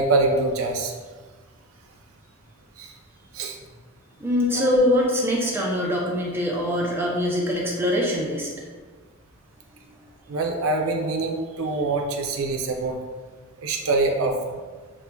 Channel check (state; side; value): normal; both; correlation 0.22